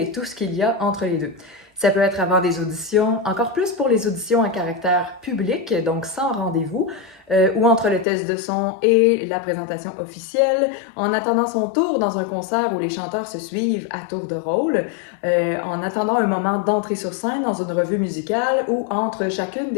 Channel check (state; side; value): drops out; right; at 8.1 s